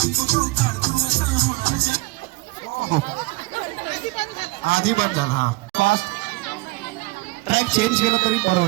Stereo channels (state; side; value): quieter; left; 23.0 dB